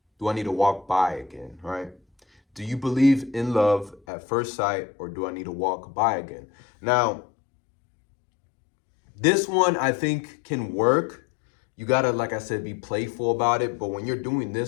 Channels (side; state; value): right; drops out; at 4.0 s